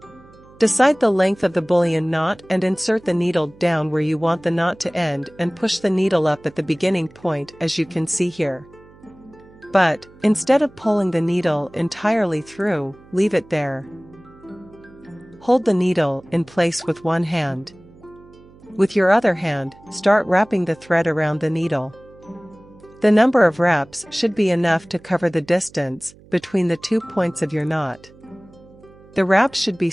Decide the length of the bullion knot and insert the needle down where you want the knot to end and push the needle up at the beginning point as you can see here. But, instead of pulling the needle entirely through, leave it there. Hold the needle in place with one hand. With your other hand, start wrapping the thread around the needle. The number of wraps should be enough to cover the distance between the 2 points of your knot. The wraps should be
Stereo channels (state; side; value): noise; right; hum, 25 dB below the sound